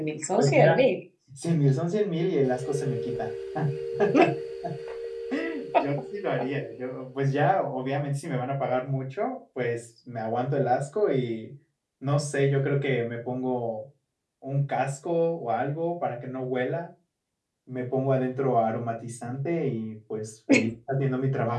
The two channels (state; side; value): identical; both; correlation 1.00